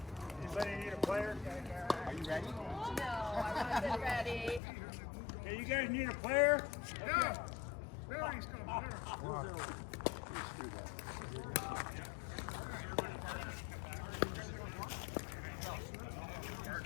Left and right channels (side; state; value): right; drops out; at 4.6 s